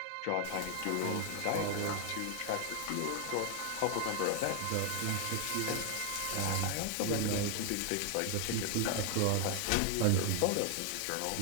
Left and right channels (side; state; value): both; different; correlation 0.00